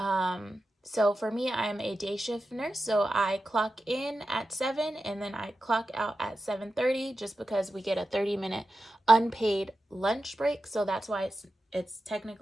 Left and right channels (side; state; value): both; normal; correlation 0.91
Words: So for me, I'm a day shift nurse, so I clock in at 7 and then I clock out at 7:30 just because we get a 30-minute unpaid lunch break. So that's why it's